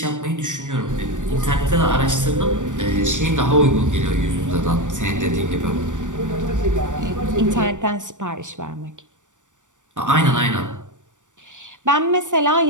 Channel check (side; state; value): left; late; 0.86 ms